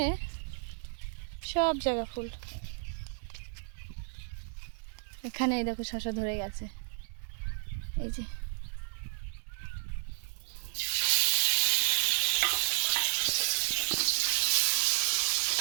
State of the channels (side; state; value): left; silent; digital silence